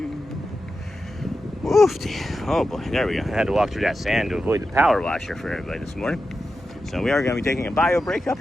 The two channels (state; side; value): normal; both; correlation 0.91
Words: Woofy. Oh boy, there we go. I had to walk through that sand to avoid the power washer for everybody this morning. So we are going to be taking a bio break up